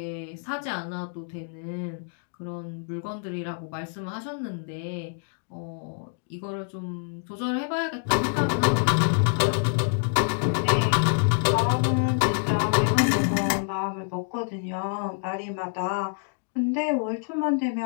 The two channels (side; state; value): right; silent; 60 dB below the other